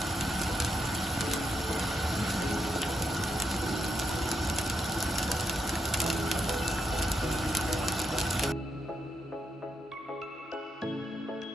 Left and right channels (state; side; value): normal; both; correlation 0.82